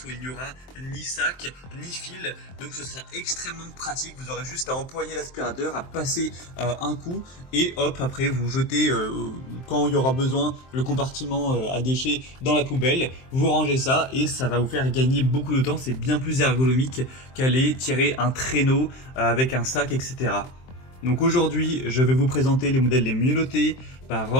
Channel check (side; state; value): right; late; 23 ms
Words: où il n'y aura ni sac, ni fil. Donc, ce sera extrêmement pratique. Vous aurez juste à empoigner l'aspirateur, à passer un coup et hop, après vous jetez quand il y aura besoin le compartiment à déchets dans la poubelle, vous rangez ça et ça va vous faire gagner beaucoup de temps. C'est bien plus ergonomique qu'aller tirer un traîneau avec un sac, etc. Donc aujourd'hui, je vais vous présenter les modèles les mieux notés par